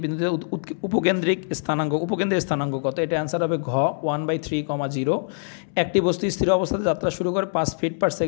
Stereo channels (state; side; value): silent; right; 63 dB below the other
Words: বিন্দুতে উপকেন্দ্রিক স্থানাঙ্ক কত? এটা অ্যান্সার হবে ঘ 1/3, 0। একটি বস্তু স্থির অবস্থাতে যাত্রা শুরু করে 5 ফিট পার